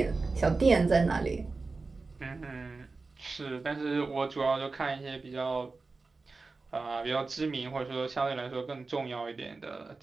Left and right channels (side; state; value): left; quieter; 3.9 dB